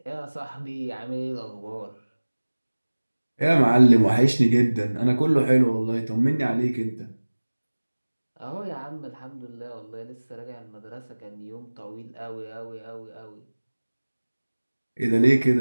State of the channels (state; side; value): inverted; both; correlation -1.00